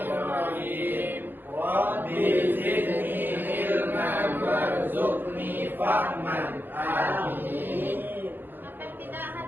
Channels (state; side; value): late; left; 0.093 ms